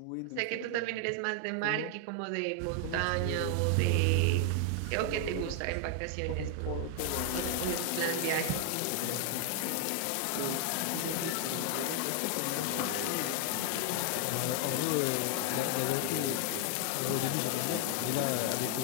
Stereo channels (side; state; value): both; different; correlation 0.00